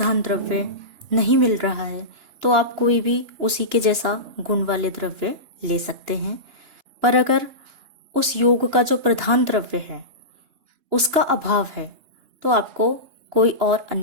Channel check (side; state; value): left; late; 2.9 ms